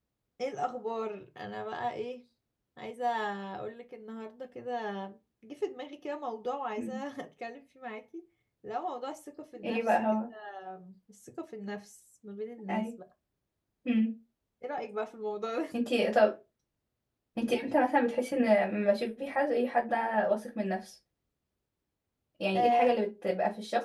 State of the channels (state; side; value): identical; both; correlation 1.00